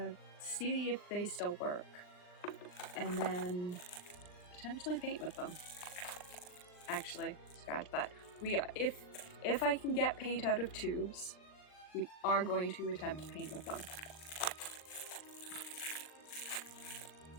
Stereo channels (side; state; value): right; late; 39 ms